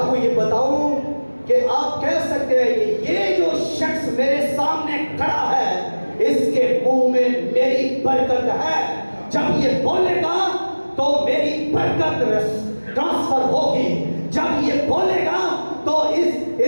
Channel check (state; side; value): inverted; both; correlation -1.00